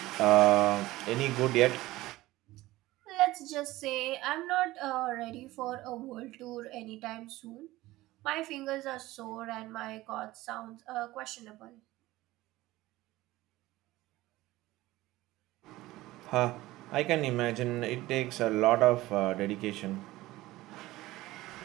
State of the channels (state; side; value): quieter; left; 17.8 dB